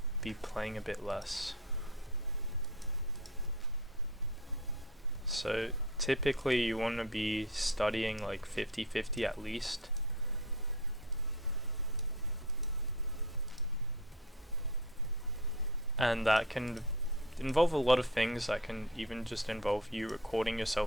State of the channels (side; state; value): right; noise; hum, 27 dB below the sound